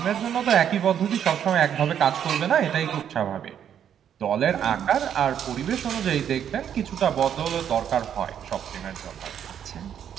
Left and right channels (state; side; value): quieter; left; 9.1 dB